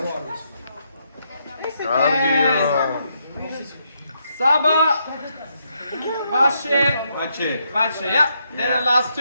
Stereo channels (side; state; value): both; inverted; correlation -0.78